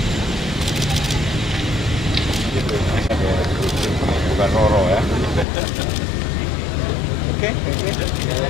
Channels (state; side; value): drops out; right; at 5.5 s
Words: bukan Roro ya. Oke.